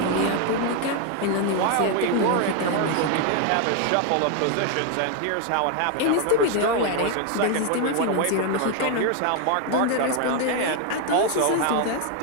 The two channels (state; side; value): different; both; correlation 0.01